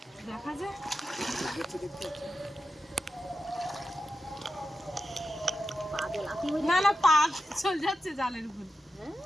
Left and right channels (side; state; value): both; normal; correlation 0.89